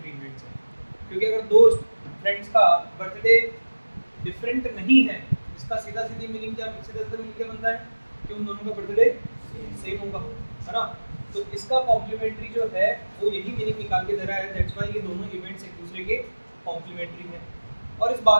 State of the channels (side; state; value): both; inverted; correlation -1.00